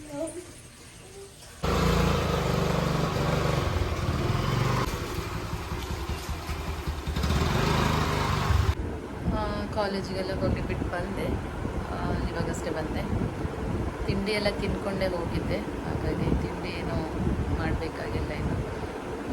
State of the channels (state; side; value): identical; both; correlation 1.00